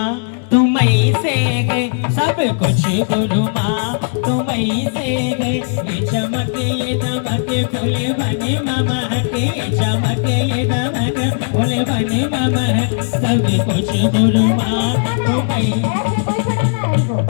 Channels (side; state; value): right; silent; digital silence